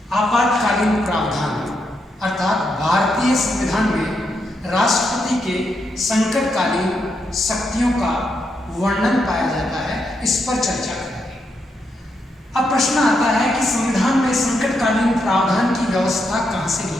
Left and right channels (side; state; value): both; normal; correlation 0.81